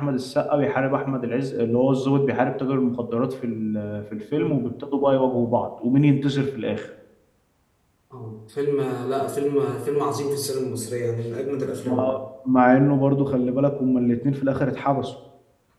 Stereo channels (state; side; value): identical; both; correlation 1.00